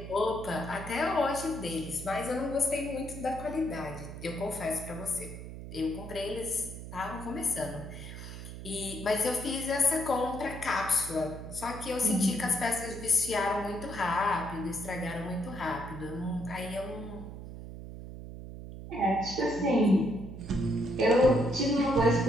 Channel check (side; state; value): right; noise; hum, 11 dB below the sound